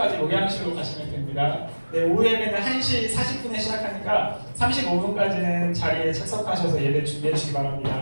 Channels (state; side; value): inverted; both; correlation -1.00